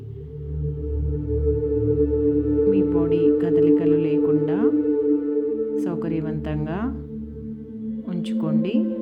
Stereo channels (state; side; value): identical; both; correlation 1.00